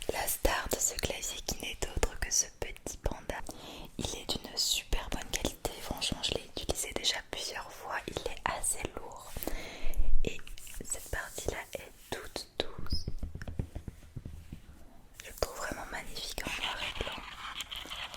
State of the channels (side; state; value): both; identical; correlation 1.00